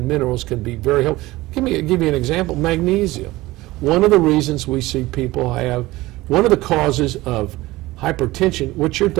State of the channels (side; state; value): left; quieter; 18.9 dB